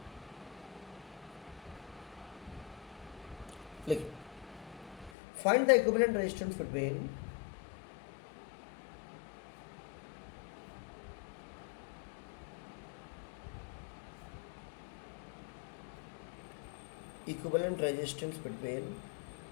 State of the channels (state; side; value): drops out; right; at 5.1 s